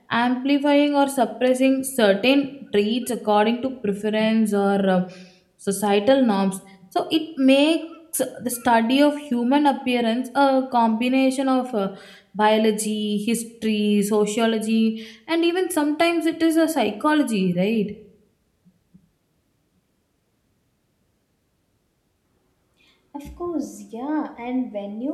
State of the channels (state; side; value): identical; both; correlation 1.00